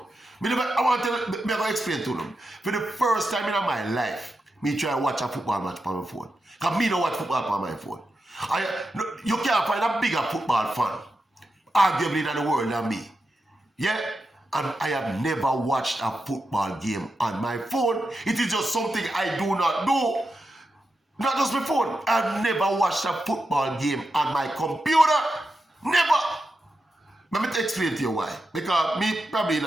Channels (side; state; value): both; normal; correlation 0.88